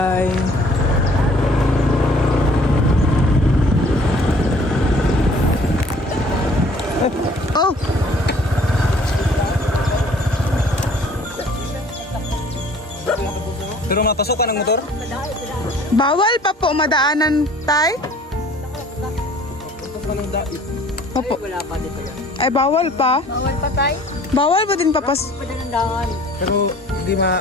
Oh! Pero mapasok ka ng motor? Bawal pa po madaanan tay? Opo. Ay, bawal pa? Bawal pa tayo. Bawal ba din papas? Pero hindi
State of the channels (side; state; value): both; normal; correlation 0.54